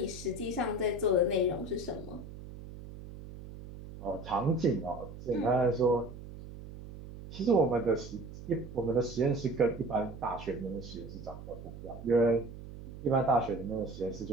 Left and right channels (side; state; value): right; noise; hum, 13 dB below the sound